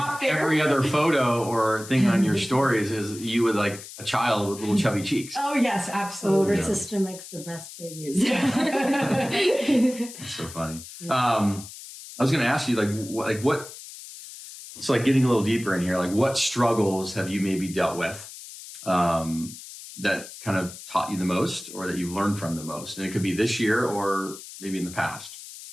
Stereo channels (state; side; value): noise; left; hiss, 14 dB below the sound